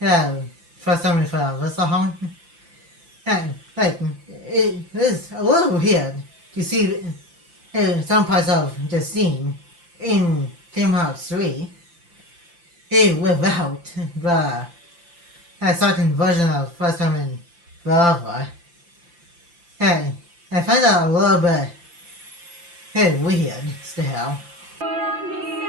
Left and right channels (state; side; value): late; left; 5.8 ms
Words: First Time in Forever song. And, like, it is a little weird to see some parts of the scene in Kingdom Hearts 3 without the second version of First Time in Forever. And I find that a little bit weird still.